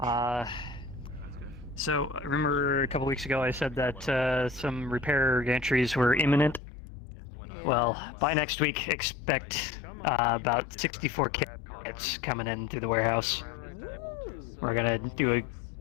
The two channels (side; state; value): right; drops out; at 6.6 s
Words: So remember a couple weeks ago I said that some repair entries were imminent? Well, by next week, expect about 64 kits coming in through the warehouse. We're gonna do a